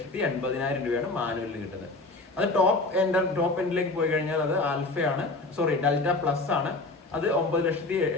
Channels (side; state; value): right; quieter; 3.2 dB